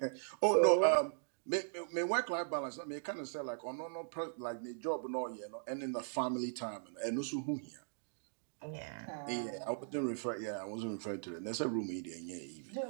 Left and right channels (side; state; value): left; silent; digital silence